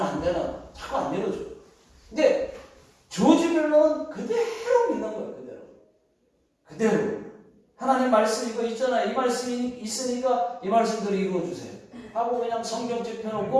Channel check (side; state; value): both; identical; correlation 1.00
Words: 되나? 자꾸 안 내려줘. 근데 조지 뮬러는 그대로 믿는 거예요. 그대로. 하나님 말씀 이거 있잖아요. 이 말씀이 있으니까 이 말씀대로 이루어주세요 하고 그냥 성경책